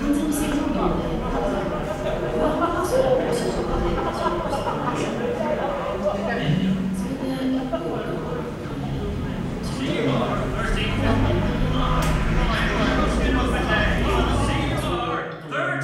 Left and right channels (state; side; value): identical; both; correlation 1.00